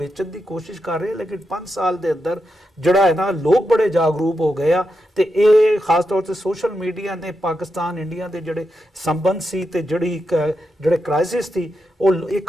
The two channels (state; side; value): normal; both; correlation 0.86